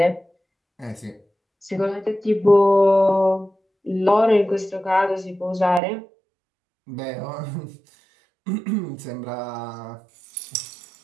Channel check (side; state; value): left; drops out; at 5.8 s